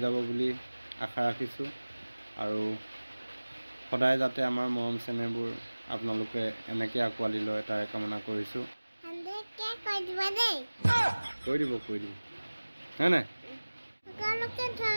যাব বুলি আশা ৰাখিছোঁ আৰু সদায় যাতে আমাৰ মৰম চেনেহবোৰ আপোনালোকে এনেকৈ আঁকোৱালি লয় তাৰে কামনা কৰিছোঁ কৈ দিব হয় নাই সকলোকে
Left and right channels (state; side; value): inverted; both; correlation -1.00